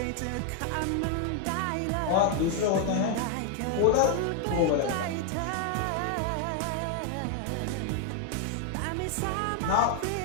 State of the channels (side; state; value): both; different; correlation 0.00